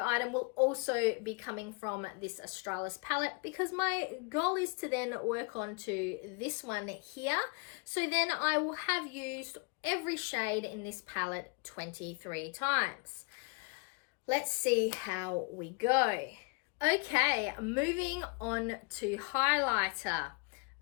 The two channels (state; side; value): quieter; right; 33.6 dB